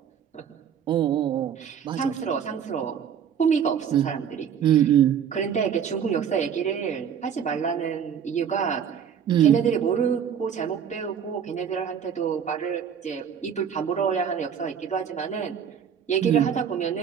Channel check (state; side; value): quieter; left; 8.1 dB